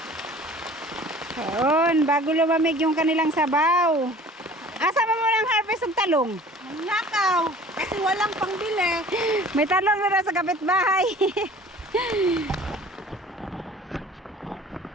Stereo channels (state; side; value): normal; both; correlation 0.47